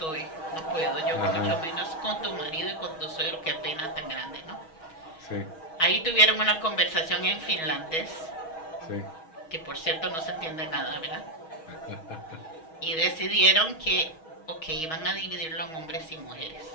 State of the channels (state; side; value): late; right; 6.3 ms